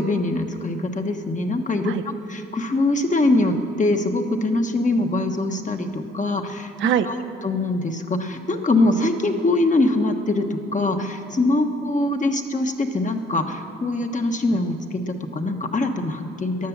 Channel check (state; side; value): normal; both; correlation 0.65